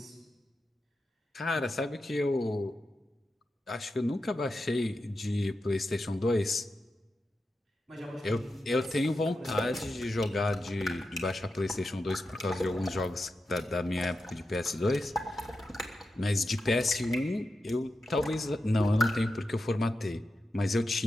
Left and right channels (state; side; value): normal; both; correlation 0.90